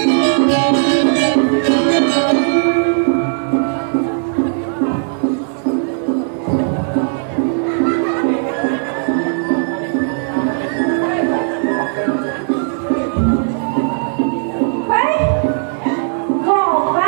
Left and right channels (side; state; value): left; silent; 65 dB below the other